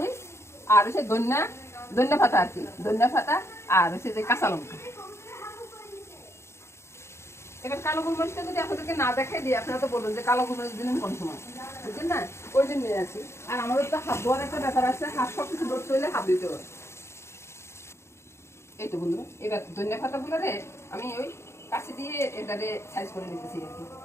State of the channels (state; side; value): late; right; 0.13 ms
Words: আর হচ্ছে ধনিয়া পাতা আর কি, ধনিয়া পাতা, আর হচ্ছে যে কাঁচা লঙ্কা। এবার কালো গোলমরিচটা যদি আপনাদেরকে না দেখাই দিই, আপনারা তো বলবেন যে কালো গোলমরিচ দিলেন কোন সময়, বুঝছেন না? ওই জন্য নিয়ে আসি। আর আমাদের তো হাত ধোয়ার একটা ব্যাপার আছে, হাত সব কিছু ধরতে হইলে হাত দিতে হবে। এই তো বন্ধুরা, এবার ধনিয়া পাতাগুলো রে আমি ওই কাছে দিয়ে এটারে সাইজ করে নিতেছি আর কি।